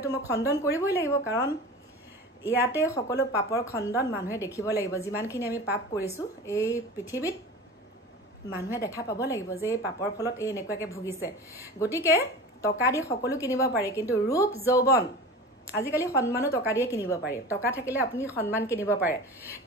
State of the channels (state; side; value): normal; both; correlation 0.34